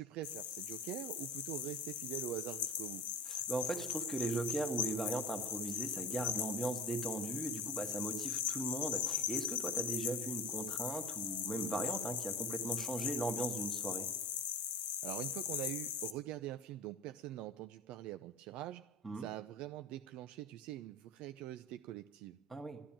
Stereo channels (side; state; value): both; normal; correlation 0.32